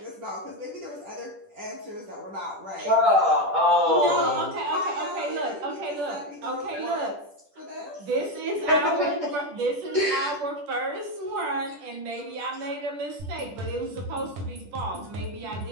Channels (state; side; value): late; left; 10 ms